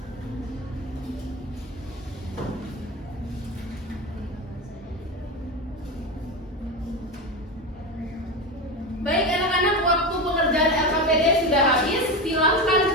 Baik anak-anak, waktu pengerjaan LKPD sudah habis. Silakan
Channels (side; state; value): both; normal; correlation 0.20